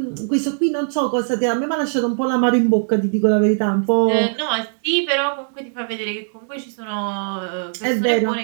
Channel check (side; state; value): left; silent; digital silence